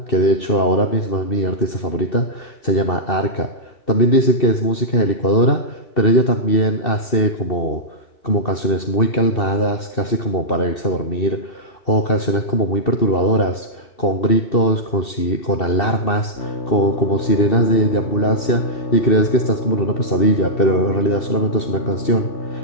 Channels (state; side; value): late; right; 2.7 ms